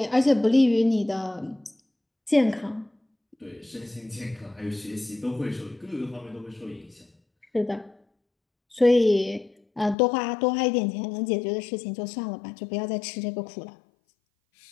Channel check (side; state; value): right; drops out; at 10.0 s